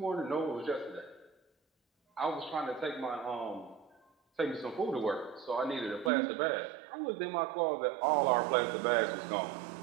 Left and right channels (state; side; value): drops out; left; at 6.1 s